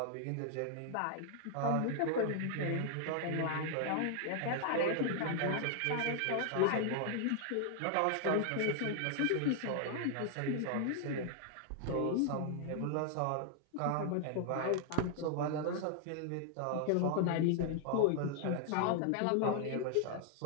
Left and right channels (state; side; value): different; both; correlation 0.00